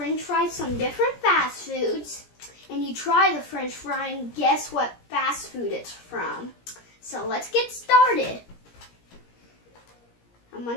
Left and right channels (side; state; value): right; late; 17 ms